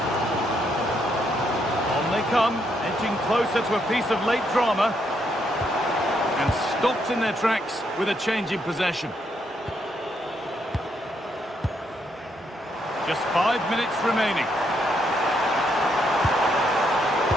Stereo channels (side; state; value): both; normal; correlation 0.76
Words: On they come. Edging closer to a piece of late drama. And stopped in their tracks with a change in possession. Just 5 minutes remaining.